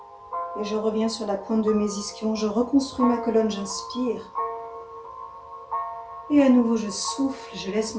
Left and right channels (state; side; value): identical; both; correlation 1.00